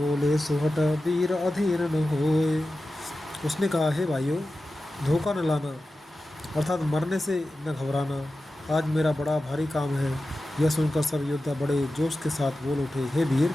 सुहट वीर अधीर न होए। उसने कहा, हे भाइयों, धोखा न लाना अर्थात मरने से न घबराना। आज मेरा बड़ा भारी काम है। यह सुनकर सब योद्धा बड़े जोश के साथ बोल उठे, हे वीर,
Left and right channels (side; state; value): both; normal; correlation 0.93